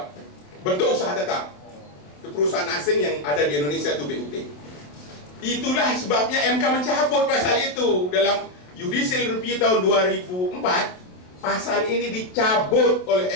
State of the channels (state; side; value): late; right; 27 ms